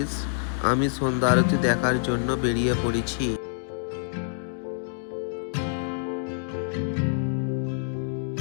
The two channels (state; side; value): silent; right; 60 dB below the other